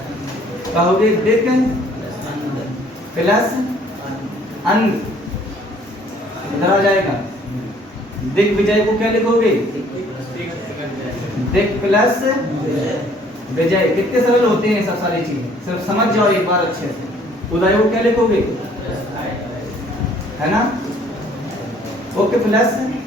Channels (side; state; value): both; normal; correlation 0.59